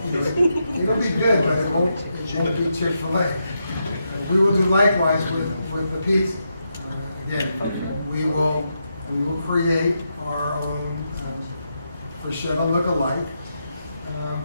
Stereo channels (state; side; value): inverted; both; correlation -0.84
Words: it'll be good, but it won't be Chick-fil-A. We will do likewise with the pizza. Again, we will create our own Freschetta look-alike,